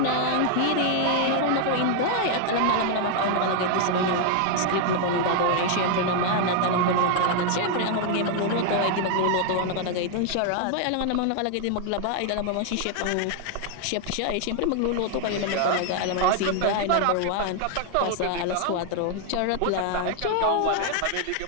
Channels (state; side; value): different; both; correlation 0.00